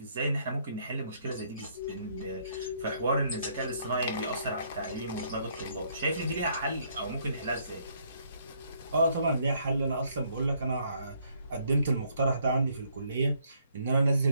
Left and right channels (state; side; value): inverted; both; correlation -0.68